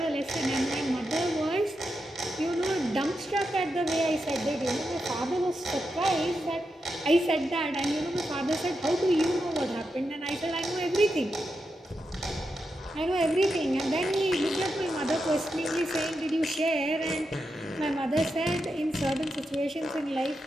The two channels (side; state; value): both; normal; correlation 0.87